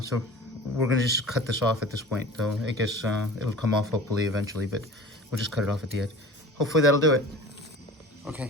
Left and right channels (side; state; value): both; normal; correlation 0.39